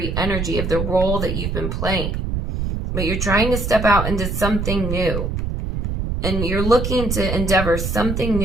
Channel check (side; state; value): right; noise; rumble, 2 dB below the sound